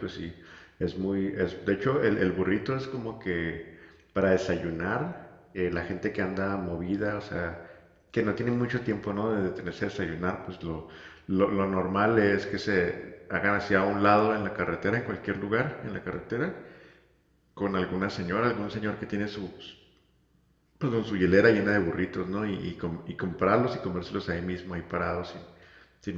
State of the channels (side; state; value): both; identical; correlation 1.00